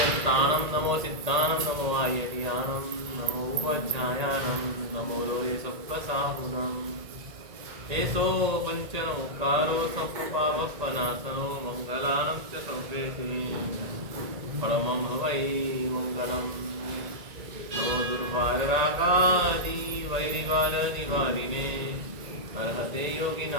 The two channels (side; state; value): left; late; 1.8 ms